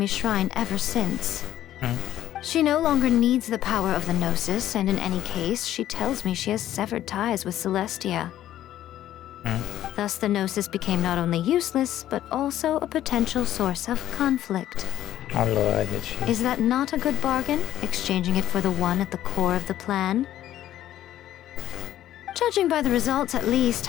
Shrine ever since. She no longer needs the power of the Gnosis, and in any case, she tells me she has severed ties with Celestia. Thus, the Gnosis became not only useless, but also a potential source of conflict. Allora, dici. Is that not a good bargain, exchanging it for the one at the core of the plan? Judging by the results, at least,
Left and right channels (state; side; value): quieter; right; 12.6 dB